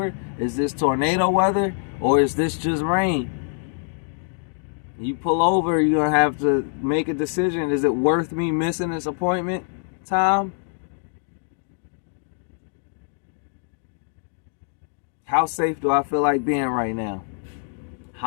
Is this tornado weather or is this just rain? You pull over, you're going to have to make a decision. Is it worth me missing this appointment time? How safe do I feel like being right now?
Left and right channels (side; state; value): right; silent; digital silence